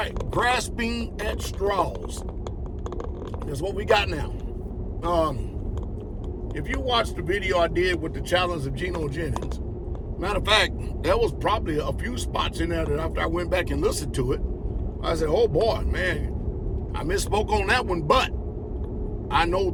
grasping at straws. That's what we got now. If you watched the video I did with the challenge of Geno Jennings, matter of fact, there was probably a few spots in there that after I went back and listened to it, I said, oh boy, man, I misspoke on that one, but I know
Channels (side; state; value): both; identical; correlation 1.00